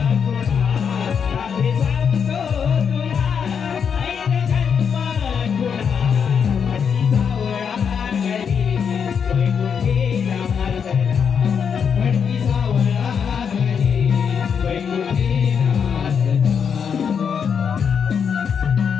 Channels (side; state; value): right; quieter; 6.9 dB